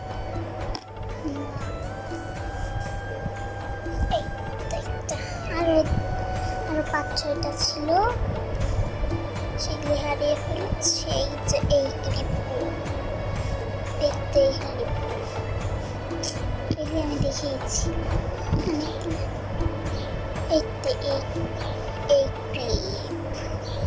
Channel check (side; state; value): both; identical; correlation 1.00